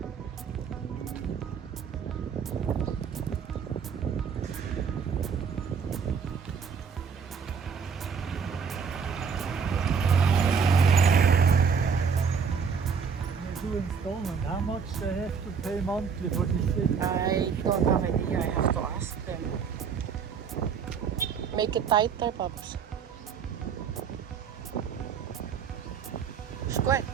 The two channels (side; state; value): left; quieter; 6.3 dB